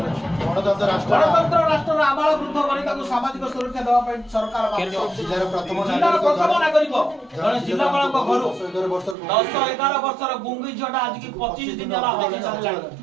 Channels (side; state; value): left; drops out; at 9.2 s